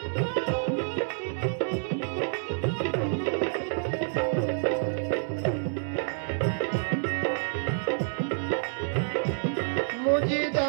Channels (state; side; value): silent; left; 59 dB below the other